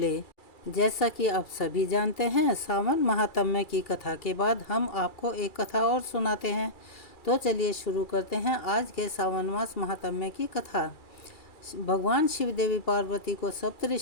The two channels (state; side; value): late; right; 2.3 ms